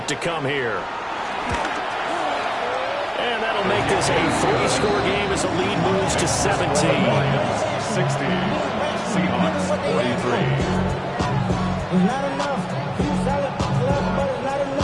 to come here. And that'll make this a 3-score game as the lead moves to 17. 60. Seahawks 43. Not enough.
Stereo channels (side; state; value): both; identical; correlation 1.00